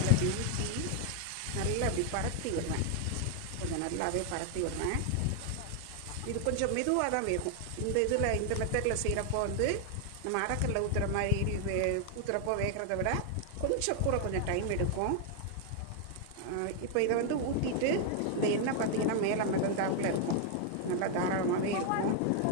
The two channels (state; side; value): different; both; correlation 0.00